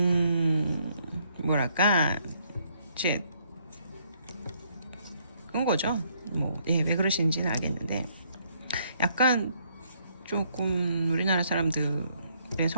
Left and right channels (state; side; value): inverted; both; correlation -0.69